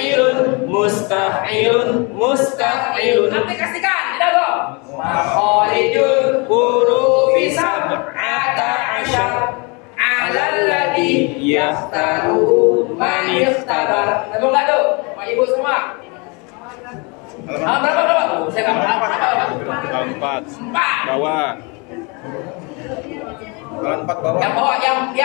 Aplikasikan. Tidak kok. Makharijul hurufi sab'ata asyar. Alalladhi yaftaruhu man ikhtabar. Nemu nggak tuh? Pak Ibu semua. Berapa? Saya nggak berapa. 4. Bawah. 4 bawah. Yang bawah,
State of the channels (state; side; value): quieter; right; 30.5 dB